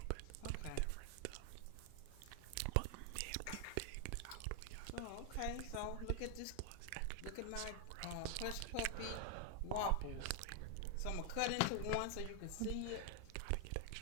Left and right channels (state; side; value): different; both; correlation 0.00